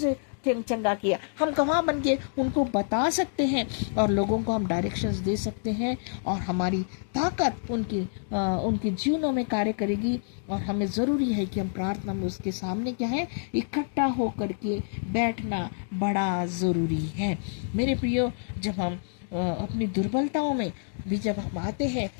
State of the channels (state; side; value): silent; right; digital silence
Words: चंगा किया। हम गवाह बन के उनको बता सकते हैं और लोगों को हम डायरेक्शंस दे सकते हैं, और हमारी ताकत उनके जीवनों में कार्य करेगी। और हमें ज़रूरी है कि हम प्रार्थना में उसके सामने क्या है, इकट्ठा होकर के बैठना बड़ा ज़रूरी है मेरे प्रियो। जब हम अपनी दुर्बलताओं में भी जब हम आते हैं